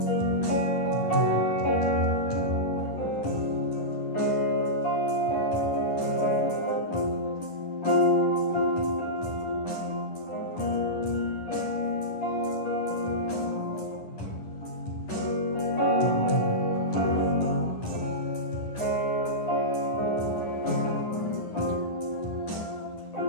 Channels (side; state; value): right; late; 10 ms